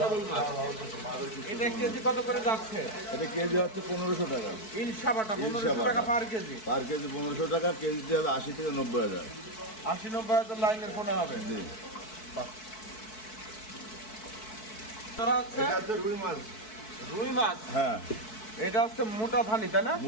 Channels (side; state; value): right; late; 4.6 ms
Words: সবল মাছ। এটা কেজি কত করে যাচ্ছে? এটা কেজি হচ্ছে 1500 টাকা। ইলশা বাটা 1500 ইলশা টাকা বাটা। পার কেজি। পার কেজি 1500 টাকা, কেজিতে হবে 80 থেকে 90,000। 80-90 লাইনের পোনা হবে। জি। বাহ। তোরা হচ্ছে এটা হচ্ছে রুই মাছ। রুই মাছ। হ্যাঁ, এটা হচ্ছে মোটা ধানি, তাই না?